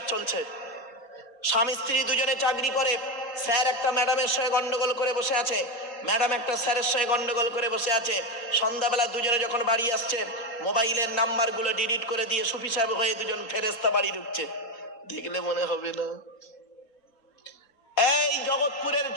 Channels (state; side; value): late; right; 4.3 ms